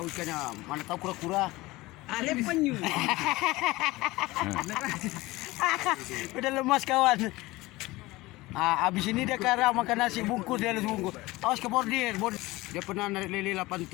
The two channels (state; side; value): quieter; right; 20.1 dB